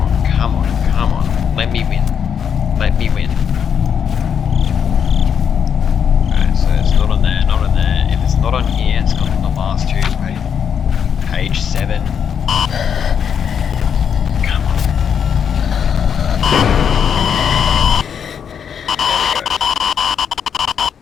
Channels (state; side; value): quieter; right; 7.6 dB